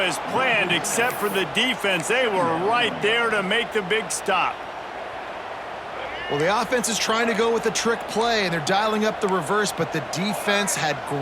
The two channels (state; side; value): identical; both; correlation 1.00